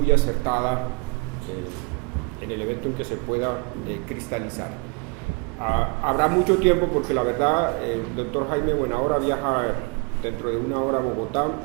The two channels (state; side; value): quieter; left; 30.9 dB